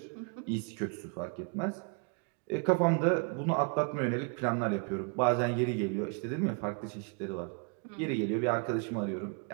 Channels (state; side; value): quieter; left; 38.0 dB